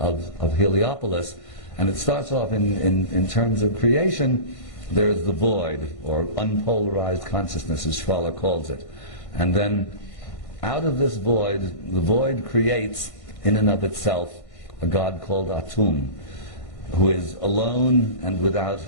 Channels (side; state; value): right; late; 1.6 ms